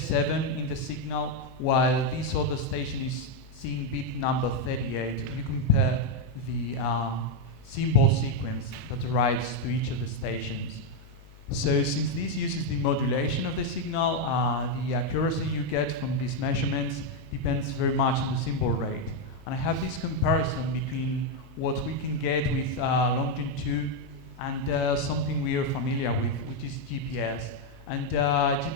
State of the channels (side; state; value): both; normal; correlation 0.02